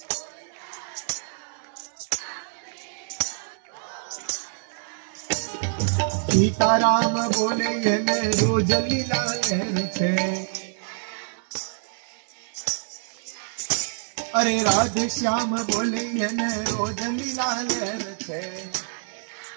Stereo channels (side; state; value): left; silent; digital silence